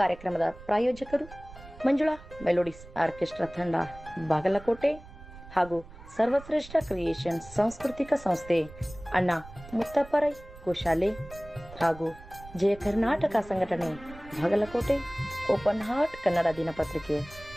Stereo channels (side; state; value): right; noise; rumble, 18 dB below the sound